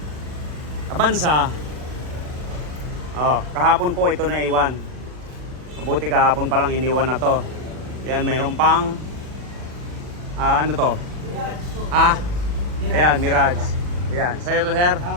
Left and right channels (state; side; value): late; left; 40 ms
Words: Avanza. Oh, kahapon po ito na iwan. Mabuti kahapon pa lang iniwan na to. Yan, mayroon pang ano to? Ayan, Mirage. Ayan, sa'yo to sir?